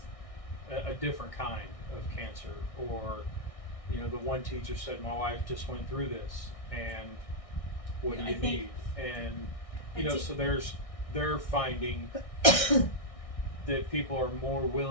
a different kind of cancer. Or, the one teacher said, my wife just went through this, and what do you need? And, so they're finding that people are more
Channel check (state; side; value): late; right; 1.6 ms